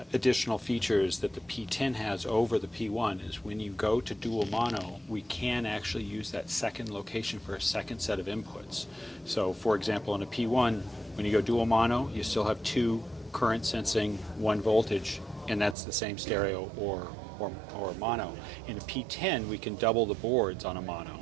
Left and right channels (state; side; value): drops out; left; at 15.8 s